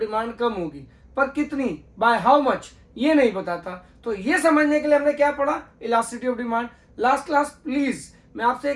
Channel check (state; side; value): identical; both; correlation 1.00